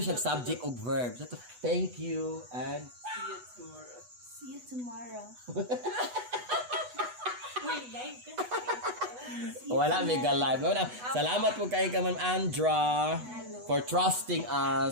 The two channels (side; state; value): left; late; 8.1 ms